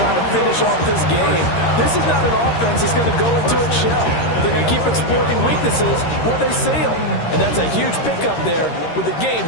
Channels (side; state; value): right; late; 13 ms